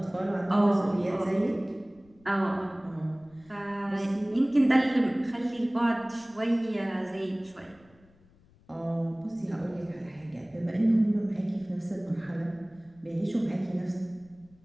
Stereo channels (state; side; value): noise; left; rumble, 29 dB below the sound